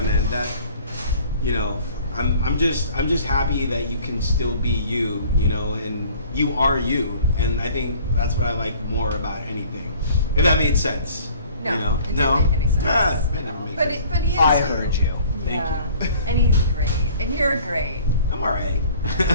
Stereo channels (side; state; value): both; inverted; correlation -0.51